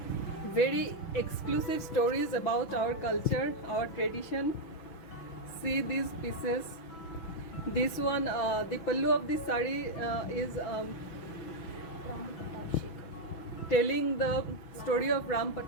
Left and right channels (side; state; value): right; late; 6.1 ms